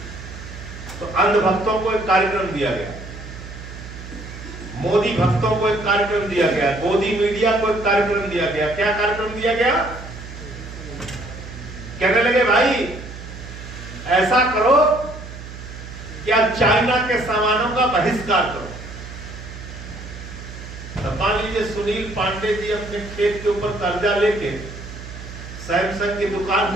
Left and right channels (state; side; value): noise; right; hum, 12 dB below the sound